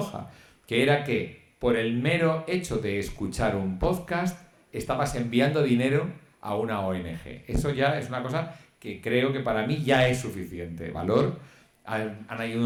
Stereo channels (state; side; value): identical; both; correlation 1.00